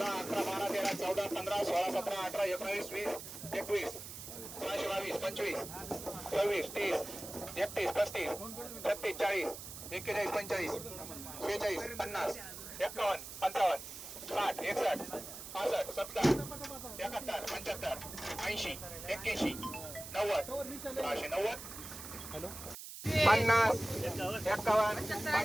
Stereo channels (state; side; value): noise; right; hiss, 11 dB below the sound